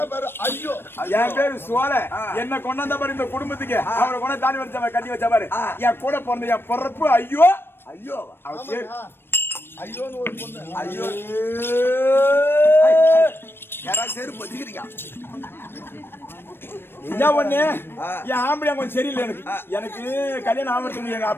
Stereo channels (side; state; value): right; late; 0.10 ms